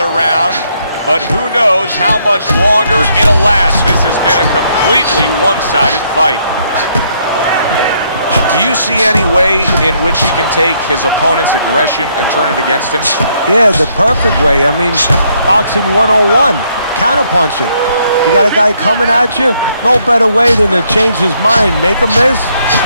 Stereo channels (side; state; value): both; inverted; correlation -0.71